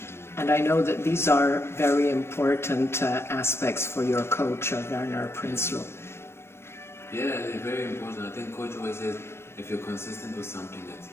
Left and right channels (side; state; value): right; late; 0.12 ms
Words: And I know that these are very important aspects for your coach, Werner Prinsloo. Yeah, they're very important. I think coach always says, if you're consistent with something